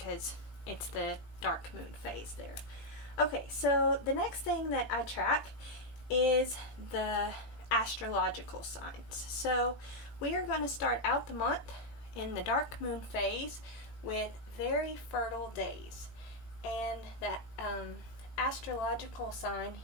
it's the dark moon phase there. Okay, so the next thing that I track is the astrological signs. So we are going to start out the month in the dark moon phase with very fertile days, and that astrological sign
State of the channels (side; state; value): right; late; 18 ms